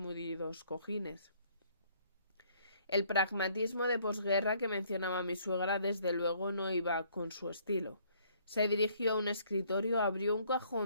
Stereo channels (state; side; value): inverted; both; correlation -0.63